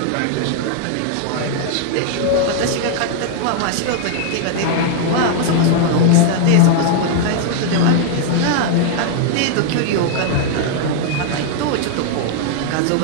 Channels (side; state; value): both; different; correlation 0.00